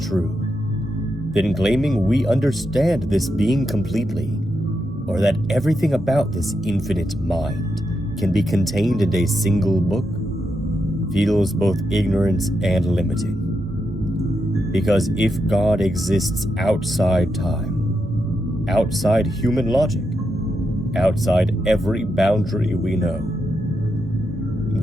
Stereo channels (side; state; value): both; normal; correlation 0.84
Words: then claiming we understand this being completely, or that everything about this infinite mind can be contained in a single book, feels both ignorant and limiting. Because if God exists outside time, outside human logic, outside every boundary we know,